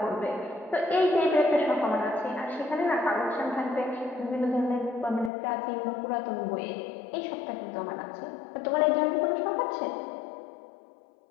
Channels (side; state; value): right; drops out; at 5.3 s